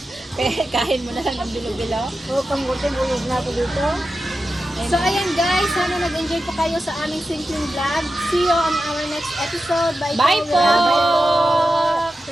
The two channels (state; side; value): normal; both; correlation 0.91